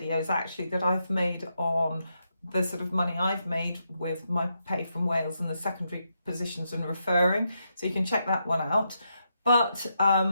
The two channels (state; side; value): inverted; both; correlation -0.82